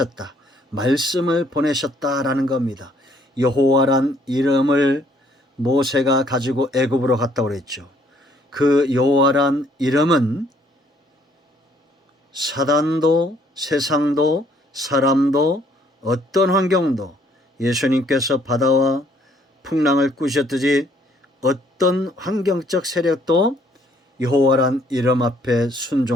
말씀을 보내셨다라는 겁니다. 여호와란 이름을 모세가 가지고 애굽으로 갔다고 그랬죠. 그 여호와란 이름은 사단도 세상도 사람도 어떤 환경도 예수님께서 바다와 풍랑을 꾸셨듯이 어떤 환경적 세력도 여호와란 이름 앞에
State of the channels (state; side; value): normal; both; correlation 0.64